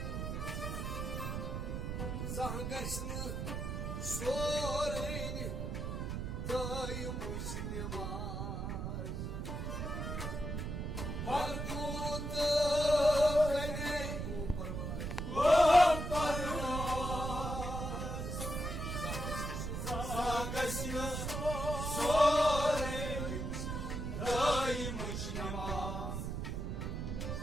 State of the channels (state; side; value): noise; right; rumble, 3 dB below the sound